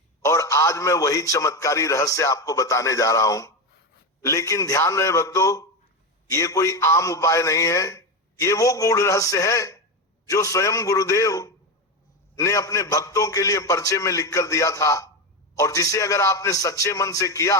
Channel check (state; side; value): normal; both; correlation 0.14